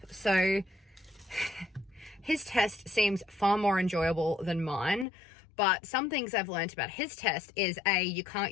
So his test seems far more enjoyable than mine. But some things I've learned about his test is you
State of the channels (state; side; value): drops out; right; at 5.1 s